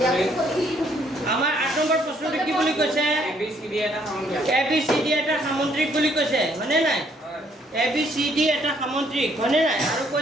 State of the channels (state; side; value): normal; both; correlation 0.67